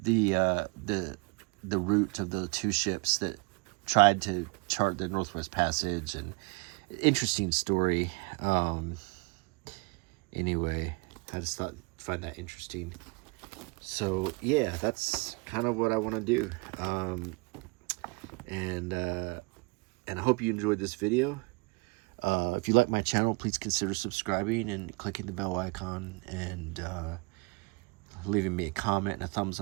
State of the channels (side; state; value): left; quieter; 29.6 dB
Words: the route of the 2 ships that tried to chart the Northwest Passage, and interesting story. Anyway, I just find that interesting. So yeah, that's kind of what I want to do. And I hope you enjoyed this video. If you like my channel, please consider subscribing and clicking the bell icon, and leaving me a comment and a thumbs